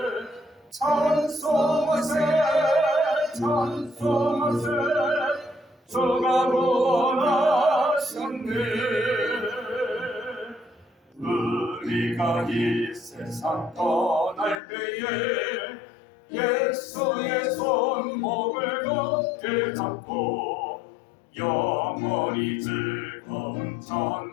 찬송하세 찬송하세 주가 구원하셨네. 우리가 이 세상 떠날 때에 예수의 손목을 굳게 잡고 영원히 즐거운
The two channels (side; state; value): right; drops out; at 14.6 s